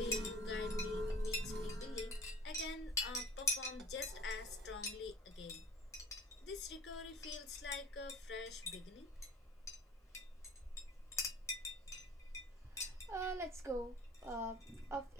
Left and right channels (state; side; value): normal; both; correlation 0.44